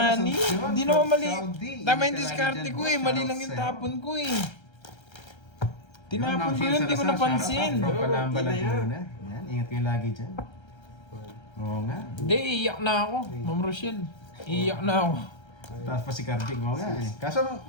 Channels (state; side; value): late; right; 1.3 ms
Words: Ferguson, yun, Hindi from naman mali. Saudi. Tama yung Hindi diskarte talaga ko dyan, eh. boss. Mali lang yung Shoutout tapon ko eh. Yun, Tinapon Ma'am ko Shane yun, hindi ko Salazar, napansin. shoutout From Oo, Palamba, ina yan. Laguna. Yan, ingat kayo lagi dyan. Oo nga. Hindi, iiyak na ako. Ma'am Rochelle. Iiyak na ako. Taas pa si Carding, oo nga eh. Kaso,